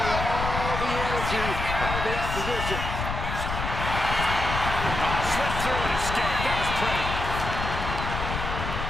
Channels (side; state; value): left; noise; rumble, 4 dB below the sound